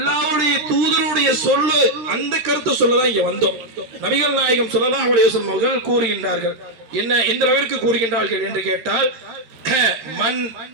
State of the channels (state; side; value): late; left; 13 ms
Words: தூதருடைய சொல்லு, அந்த கருத்தை சொல்லதான் இங்க வந்தோம். நபிகள் நாயகம் ஸல்லல்லாஹு அலைஹி வஸல்லம் அவர்கள் கூறுகின்றார்கள். என்ன, எந்த அளவிற்கு கூறுகின்றார்கள் என்று கேட்டால், மன்